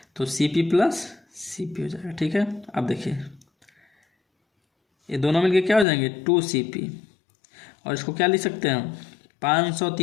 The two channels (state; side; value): drops out; right; at 5.9 s